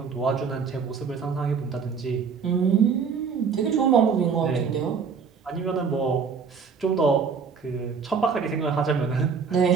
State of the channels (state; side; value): quieter; left; 5.9 dB